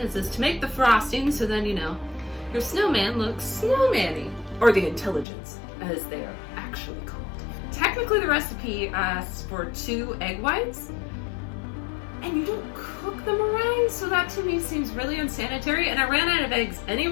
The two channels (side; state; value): right; drops out; at 5.2 s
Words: is to make the frosting so then, you know, your snowman looks snowman-y, or the intelligence, as they are actually called. Technically, the recipe asks for 2 egg whites, and you don't cook the meringue, so that to me seems really unsanitary, and I ran out of eggs